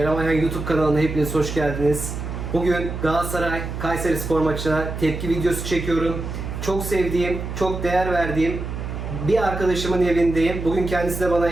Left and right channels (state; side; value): noise; right; hum, 6 dB below the sound